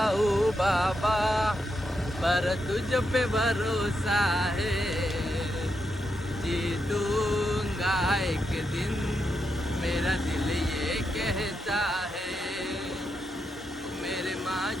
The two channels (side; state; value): both; normal; correlation 0.84